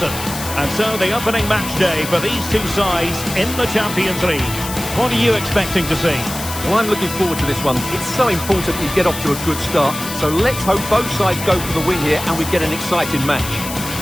And so the opening match day for these two sides in the Champions League. What are you expecting to see? Well, I'm looking forward to this one. It's so important you get off to a good start. So let's hope both sides go for the win here and we get an exciting match.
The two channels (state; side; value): noise; left; hiss, 9 dB below the sound